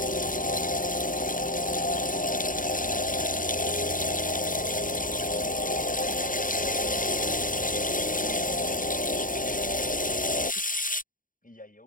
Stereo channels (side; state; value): right; late; 0.39 ms